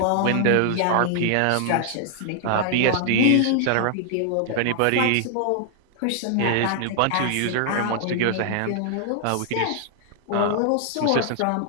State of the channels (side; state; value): both; different; correlation 0.00